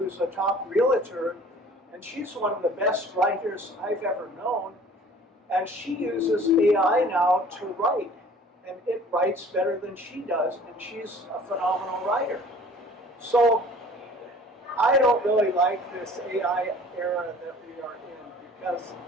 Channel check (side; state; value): both; normal; correlation 0.49